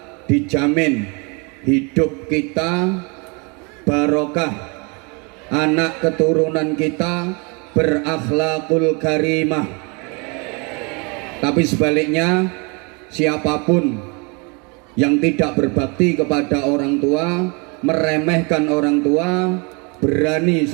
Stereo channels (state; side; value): quieter; left; 31.1 dB